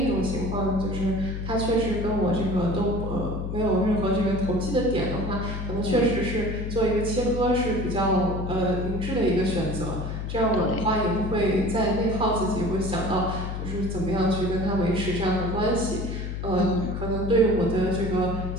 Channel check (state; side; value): noise; left; hum, 5 dB below the sound